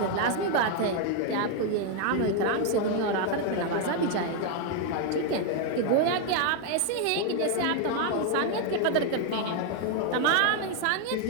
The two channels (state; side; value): different; both; correlation 0.01